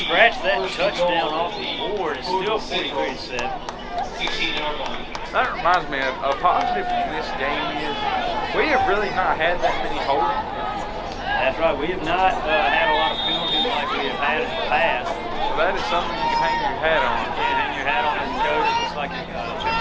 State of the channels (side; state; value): both; identical; correlation 1.00